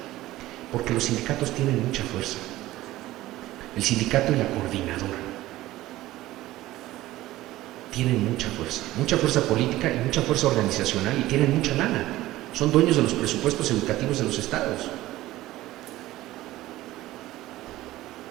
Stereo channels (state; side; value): quieter; left; 16.4 dB